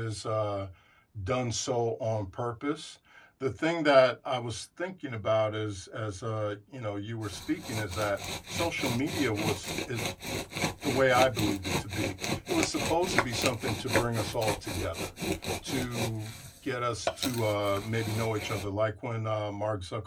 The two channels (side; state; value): both; identical; correlation 1.00